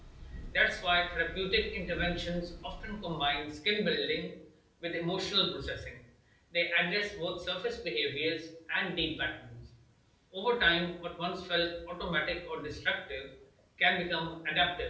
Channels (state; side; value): identical; both; correlation 1.00